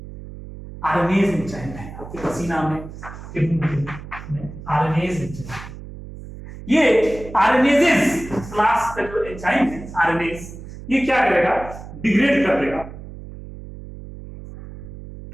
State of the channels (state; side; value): noise; right; hum, 13 dB below the sound